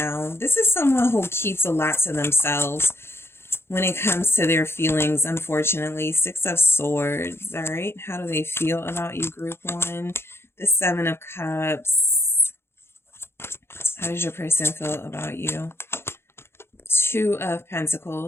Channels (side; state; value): right; late; 0.12 ms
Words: This is someone who keeps a lot to themselves when it comes to their feelings, unfortunately. Six of Swords, all right? How do they feel about you, Group 1? The Seven of Cups. How does your person feel about you? Two of